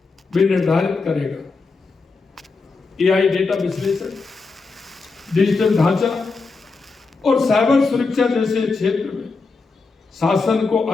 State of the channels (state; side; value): quieter; right; 4.2 dB